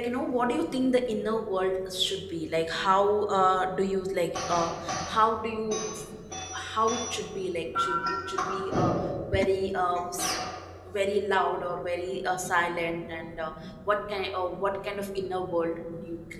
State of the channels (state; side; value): identical; both; correlation 1.00